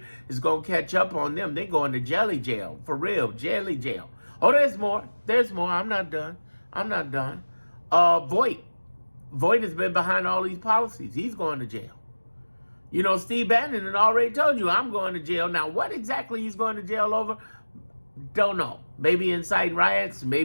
is going to catch up on them. They're going to jelly jail. For real, jelly jail. Oh, there's more. There's more. I'm not done. Voight has been behind all these policies. He's going to jail. Steve Bannon had already told you, I'm going to jail. Now, what exactly he's going to jail over? Don't know. Maybe inciting riots,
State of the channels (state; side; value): inverted; both; correlation -1.00